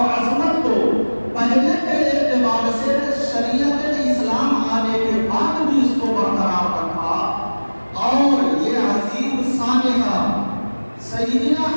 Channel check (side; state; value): both; inverted; correlation -1.00